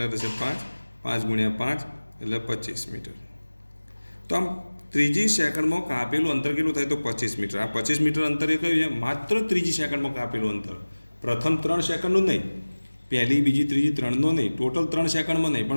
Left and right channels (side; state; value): both; inverted; correlation -1.00